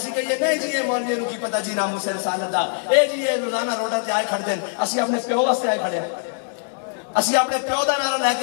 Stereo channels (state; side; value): silent; right; digital silence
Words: کہیے نہیں جی یہ مولوی نو کی پتہ جی ناموس رسالت دا، اے جی یہ روزانہ روڈاں تے آئے کھڑدے ہیں، اسی اپنے پیو واسطے آئے کھڑے ہیں، اسی اپنے پیو دا نعرہ لے